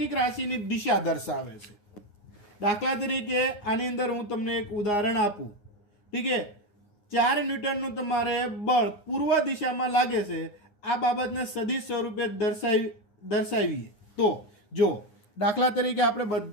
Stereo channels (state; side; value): late; right; 9.7 ms